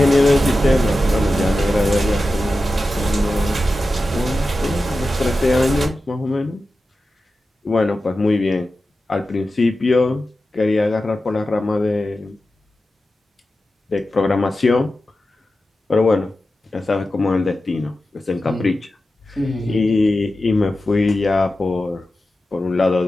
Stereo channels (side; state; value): both; normal; correlation 0.93